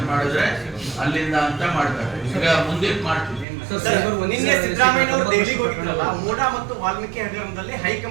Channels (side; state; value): left; drops out; at 3.5 s